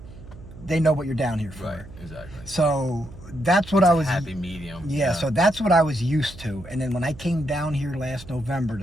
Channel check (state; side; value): noise; right; hum, 17 dB below the sound